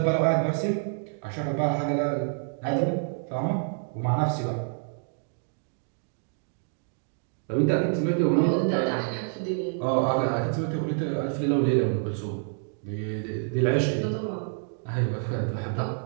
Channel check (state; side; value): silent; left; digital silence